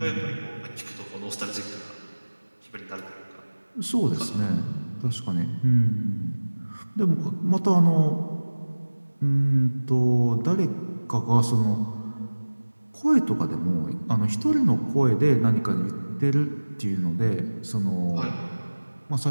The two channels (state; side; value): inverted; both; correlation -1.00